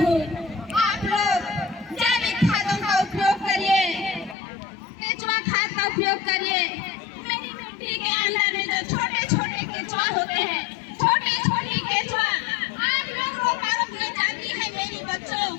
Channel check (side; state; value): right; drops out; at 4.4 s